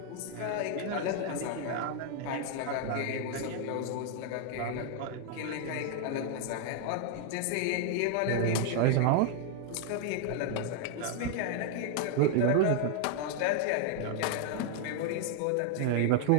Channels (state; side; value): different; both; correlation 0.00